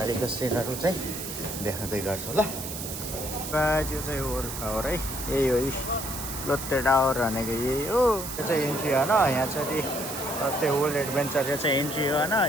सिनहरू चाहिँ देखाउँदै गर्छु ल। यो चाहिँ वर्ल्ड टावर है, यही हो लोtte टावर भनेको यही हो। यो चाहिँ इन्ट्री होइन, यहाँ चाहिँ लोtte वर्ल्ड एडभेन्चर यो चाहिँ इन्ट्री हो होइन।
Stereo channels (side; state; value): right; noise; hiss, 7 dB below the sound